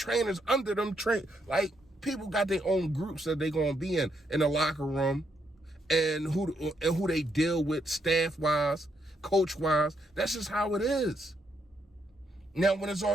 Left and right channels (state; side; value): normal; both; correlation 0.77